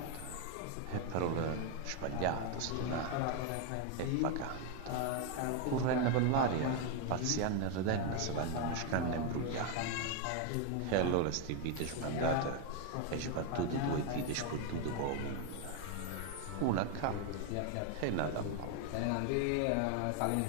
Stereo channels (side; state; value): both; different; correlation 0.01